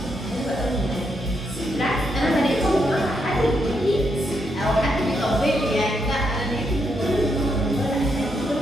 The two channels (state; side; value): normal; both; correlation 0.79